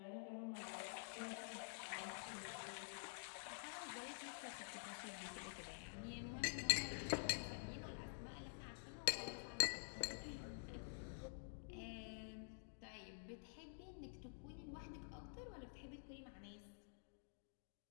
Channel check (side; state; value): right; silent; digital silence